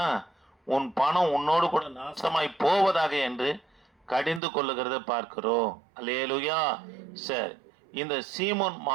உன் பணம் உன்னோடு கூட நாசமாய் போவதாக என்று கடிந்து கொள்ளுகிறத பார்க்கிறோம். அல்லேலூயா. சரி, இந்த சீமோன்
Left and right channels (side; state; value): left; drops out; at 4.4 s